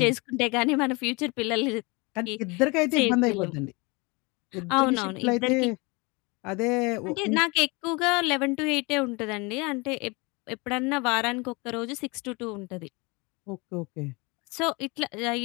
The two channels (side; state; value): right; quieter; 27.4 dB